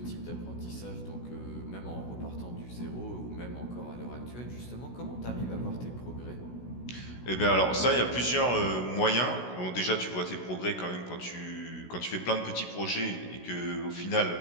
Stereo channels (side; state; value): right; late; 16 ms